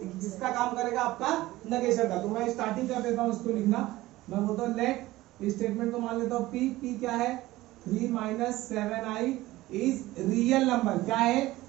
जिसका काम करेगा आपका नेगेशन का। तो मैं स्टार्टिंग कर देता हूं इसको लिखना। मैं बोलता हूं लेट, स्टेटमेंट को मान लेता हूं पी। पी क्या है, 3 - 7i इज रियल नंबर। क्या है,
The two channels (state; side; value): quieter; left; 17.5 dB